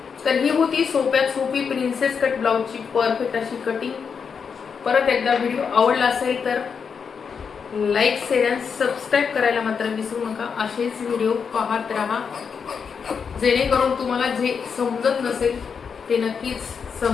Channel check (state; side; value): quieter; right; 6.2 dB